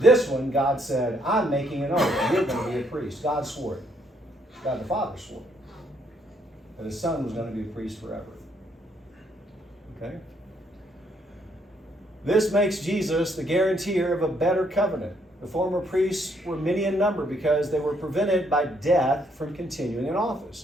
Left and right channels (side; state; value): both; normal; correlation 0.70